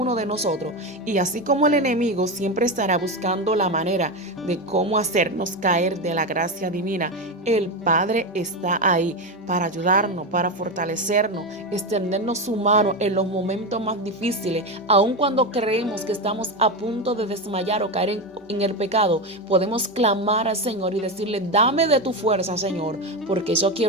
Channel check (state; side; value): normal; both; correlation 0.15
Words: de nosotros y así como el enemigo siempre estará buscando la manera de cómo hacernos caer de la gracia divina, el Padre está ahí para ayudarnos, para fortalecernos, extendernos su mano en los momentos más difíciles. Aun cuando creemos que estamos a punto de desmayar o caer en el pecado, podemos clamar al Señor y decirle: dame de tu fuerza, Señor, porque yo